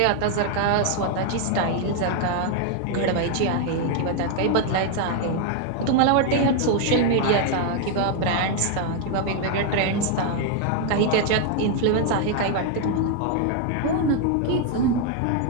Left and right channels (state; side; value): different; both; correlation 0.00